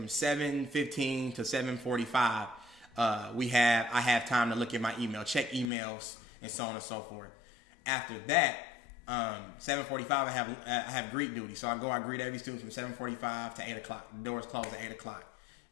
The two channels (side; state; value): right; drops out; at 5.7 s